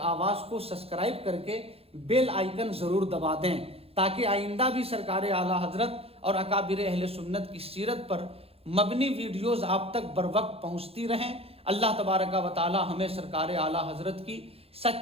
آواز کو سبسکرائب کر کے بیل آئیکن ضرور دبا دیں تاکہ آئندہ بھی سرکار اعلیٰ حضرت اور اکابر اہل سنت کی سیرت پر مبنی ویڈیوز آپ تک بر وقت پہنچتی رہیں۔ اللہ تبارک و تعالی ہمیں سرکار اعلیٰ حضرت کی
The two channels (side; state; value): left; late; 0.28 ms